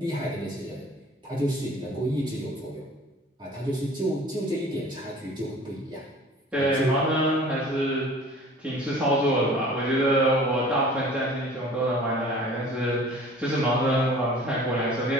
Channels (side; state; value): both; normal; correlation 0.47